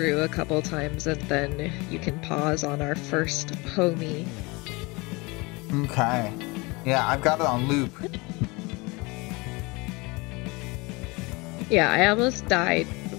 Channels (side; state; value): right; quieter; 25.6 dB